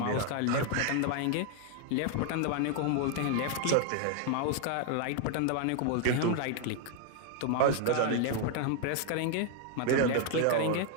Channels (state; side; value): different; both; correlation 0.00